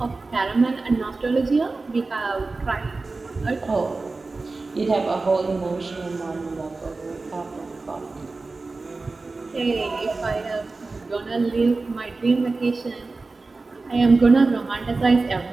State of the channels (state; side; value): quieter; left; 3.6 dB